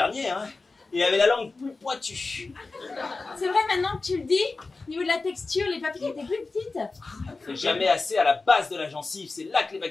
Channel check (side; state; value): right; quieter; 3.7 dB